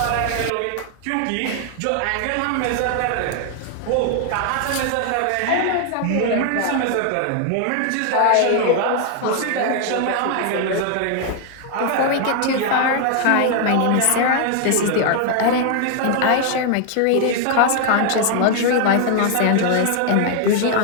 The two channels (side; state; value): both; different; correlation 0.00